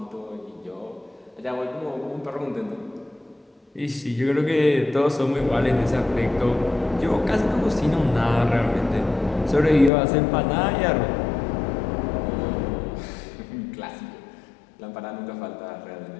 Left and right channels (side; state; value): right; drops out; at 9.9 s